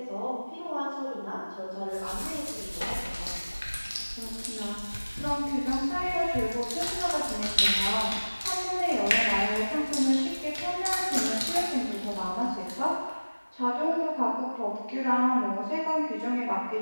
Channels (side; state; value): both; inverted; correlation -1.00